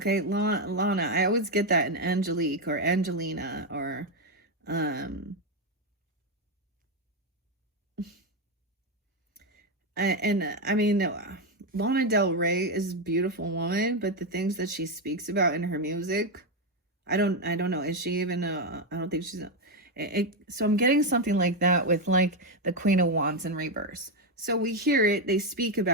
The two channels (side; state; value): both; normal; correlation 0.06